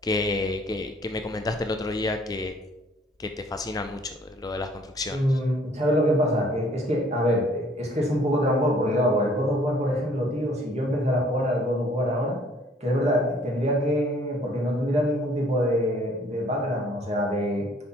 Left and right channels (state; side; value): normal; both; correlation 0.58